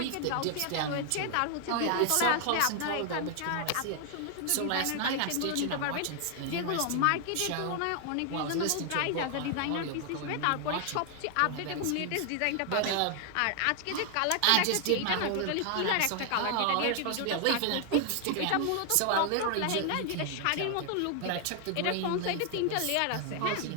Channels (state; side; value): different; both; correlation 0.00